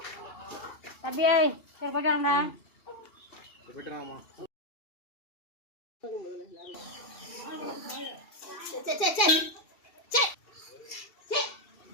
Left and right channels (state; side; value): late; right; 2.7 ms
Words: தம்பியே சரி போயிட்டாங்கடா.